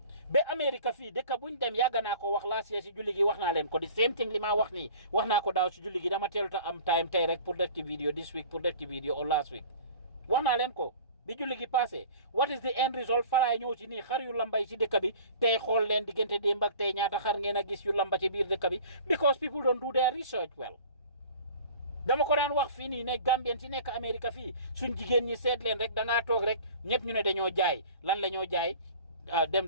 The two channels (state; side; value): inverted; both; correlation -0.44